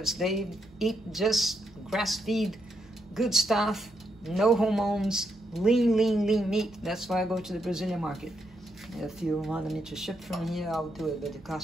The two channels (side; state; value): both; normal; correlation 0.80